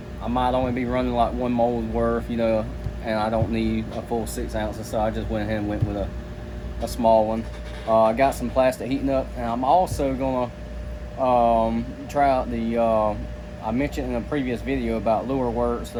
might only be running like one mold worth, and I don't need a full 6 ounces, so I just went ahead and went with a small one. I got some plastic heating up, and I'm also gonna try out the I mentioned in a previous video about lureworks.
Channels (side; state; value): both; identical; correlation 1.00